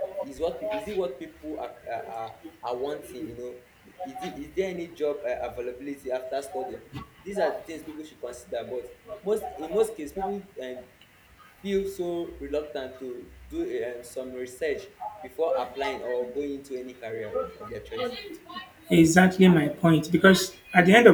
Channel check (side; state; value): both; identical; correlation 1.00